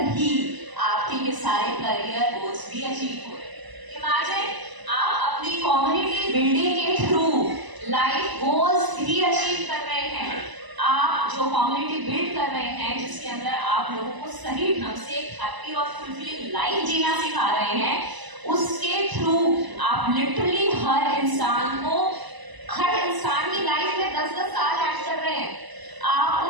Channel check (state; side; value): late; left; 1.0 ms